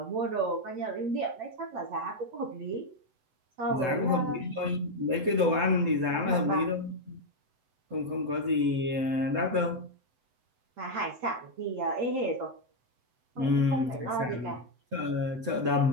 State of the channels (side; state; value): left; late; 7.9 ms